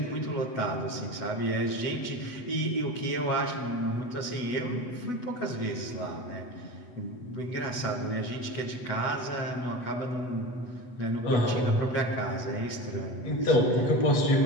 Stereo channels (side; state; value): right; late; 8.0 ms